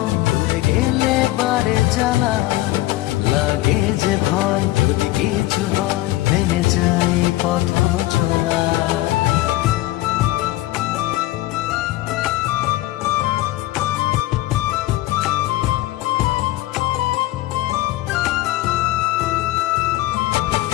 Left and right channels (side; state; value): right; quieter; 17.4 dB